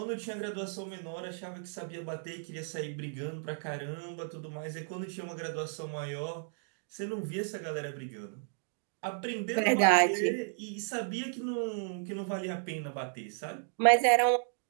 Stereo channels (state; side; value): silent; left; digital silence